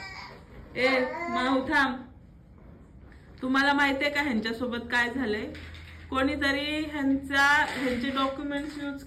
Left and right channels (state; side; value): identical; both; correlation 1.00